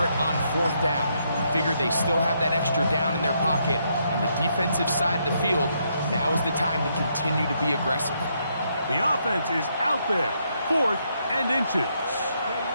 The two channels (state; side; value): inverted; both; correlation -0.76